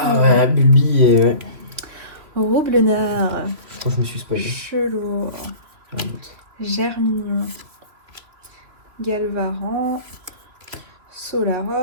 ouais, Bulbi et... Ouais. Roublenard. Je crois que je me suis spoilé. Chelour. Germignon. Galvaran.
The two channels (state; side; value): late; left; 3.2 ms